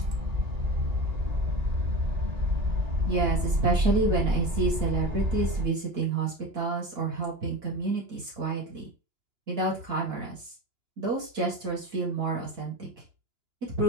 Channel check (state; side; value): late; left; 2.9 ms